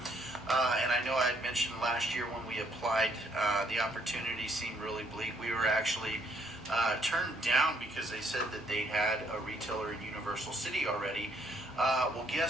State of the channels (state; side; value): noise; right; hum, 24 dB below the sound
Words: And I know I had mentioned last year when we applied, the opportunity seemed really bleak. We were actually turned down because they said that they had a retailer in Universal City already. Well,